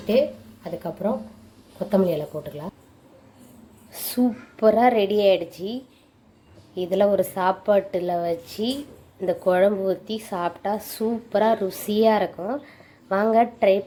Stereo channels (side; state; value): both; identical; correlation 1.00